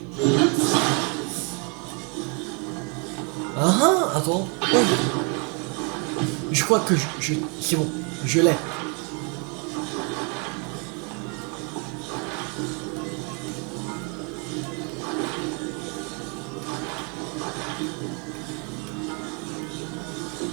Ah ah, attends. Oh. Je crois que c'est bon, je l'ai.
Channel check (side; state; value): left; quieter; 35.4 dB